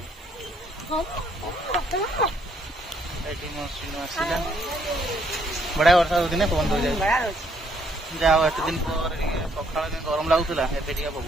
आसला बढ़िया वर्षा होती पवन दो जाए जाओ एत दिन पर सका गरम लगुला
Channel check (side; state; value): both; normal; correlation 0.69